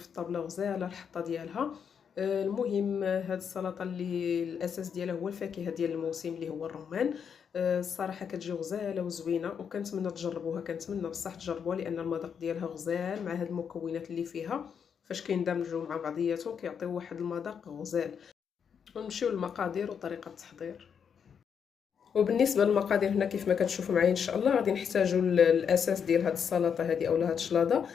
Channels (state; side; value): quieter; right; 7.2 dB